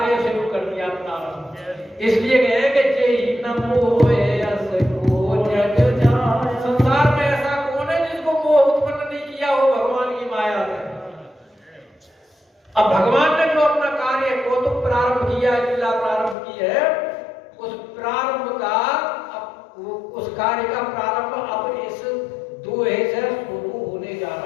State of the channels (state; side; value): drops out; right; at 16.4 s